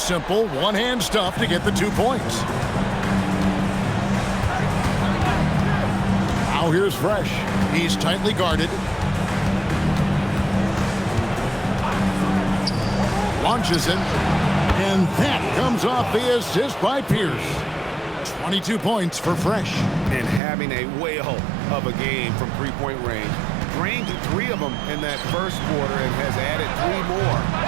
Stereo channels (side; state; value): left; drops out; at 20.4 s